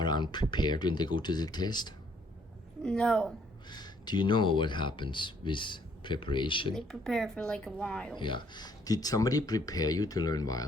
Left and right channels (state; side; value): normal; both; correlation 0.65